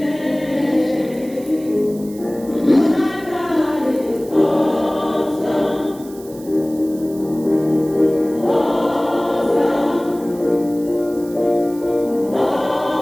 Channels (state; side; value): noise; right; hiss, 21 dB below the sound